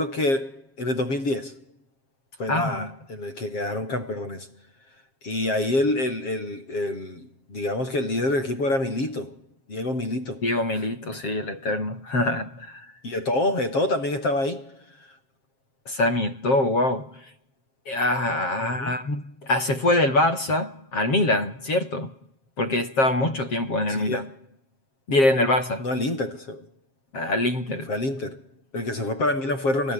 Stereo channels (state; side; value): late; right; 7.5 ms